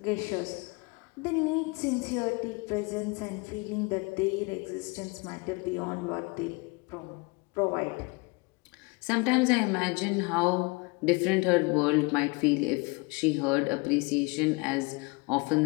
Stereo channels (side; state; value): right; quieter; 27.8 dB